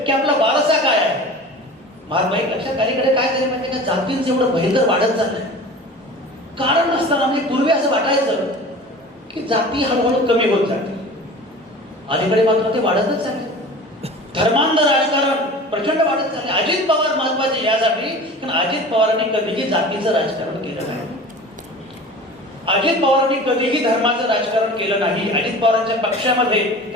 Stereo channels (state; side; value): normal; both; correlation 0.39